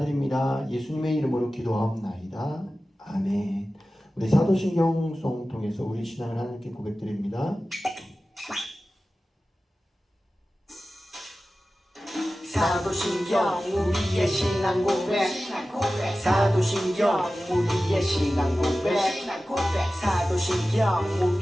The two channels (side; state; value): both; normal; correlation 0.95